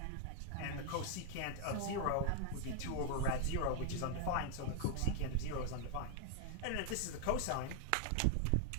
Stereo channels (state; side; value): different; both; correlation 0.00